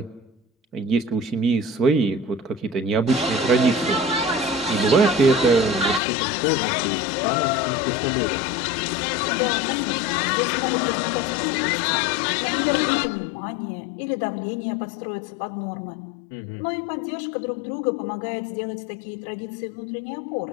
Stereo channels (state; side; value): drops out; right; at 6.0 s